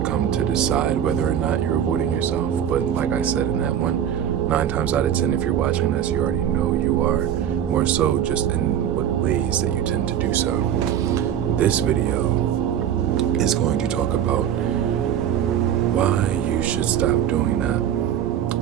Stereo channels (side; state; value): left; quieter; 9.8 dB